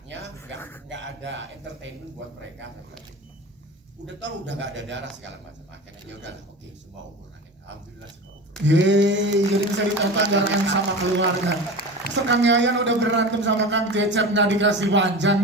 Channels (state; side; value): normal; both; correlation 0.31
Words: nggak ada entertainment buat mereka. Udah tahu udah nggak ada darah segala macam. Akhirnya ya udah oke, semua umur akhirnya. Alhamdulillah semua umur. Yeay, jadi bisa ditonton bareng sama keluarga. Kang Yayan udah berantem sama Kang Cecep nggak dikasih panjang